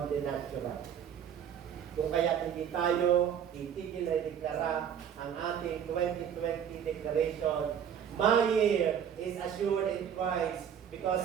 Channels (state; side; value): quieter; left; 8.7 dB